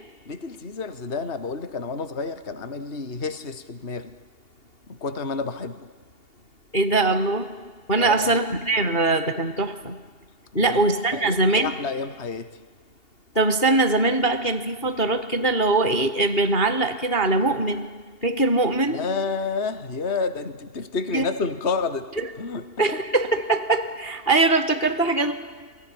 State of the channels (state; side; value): late; right; 2.8 ms